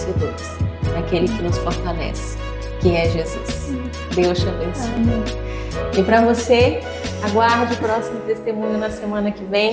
naquele que nos fortalece, que é Jesus. Deus te abençoe. E para você, aguarde o próximo testemunho na semana que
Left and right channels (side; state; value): both; identical; correlation 1.00